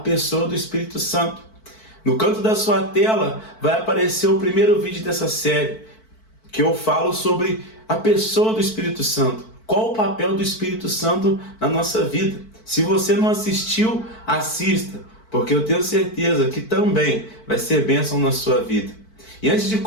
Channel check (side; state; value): right; late; 4.5 ms